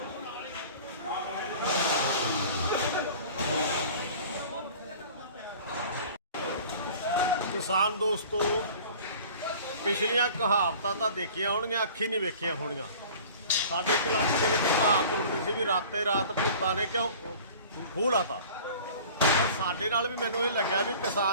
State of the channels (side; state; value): both; inverted; correlation -0.44